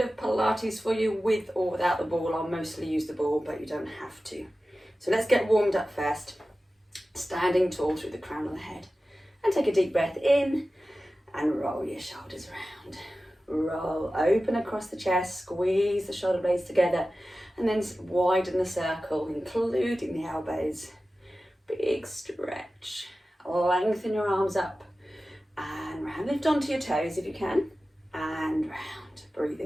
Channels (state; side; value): normal; both; correlation 0.95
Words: of Pilates for you with or without the ball. I'll mostly use the ball, but you don't have to. So let's get warmed up first. Standing tall through the crown of the head. And take a deep breath in and roll your shoulders around. Roll, open across the chest, squeeze the shoulder blades together, and then widen the circle, including the elbows. Big stretch. Lengthen your arms up and round. Lift onto your toes if you can, and round.